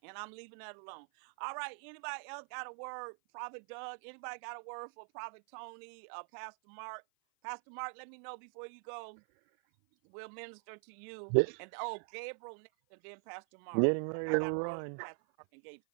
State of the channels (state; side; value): silent; left; 50 dB below the other